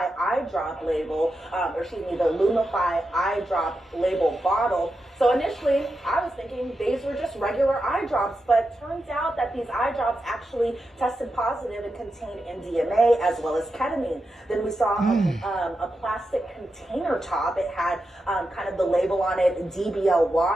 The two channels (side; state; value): both; normal; correlation 0.88